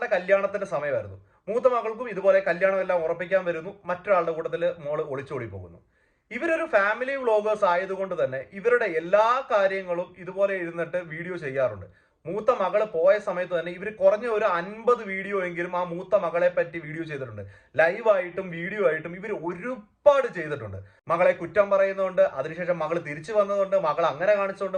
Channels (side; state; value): both; identical; correlation 1.00